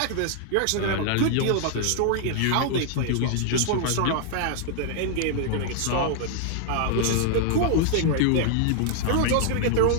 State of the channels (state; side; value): different; both; correlation 0.00